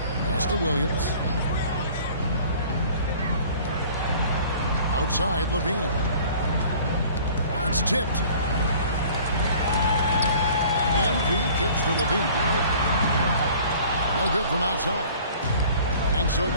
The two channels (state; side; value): inverted; both; correlation -0.49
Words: Pass to Williams. Outside, LaVine. That's tipped. MP kicks to LaVine. No good from outside. And so